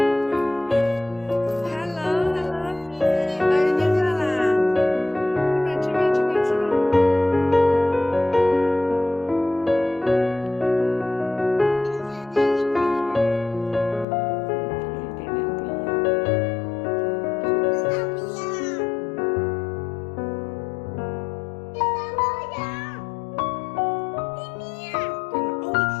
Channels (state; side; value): drops out; right; at 14.1 s